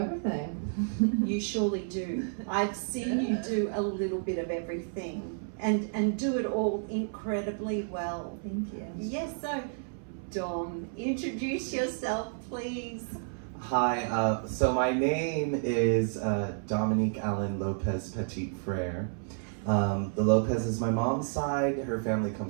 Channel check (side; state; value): left; silent; 57 dB below the other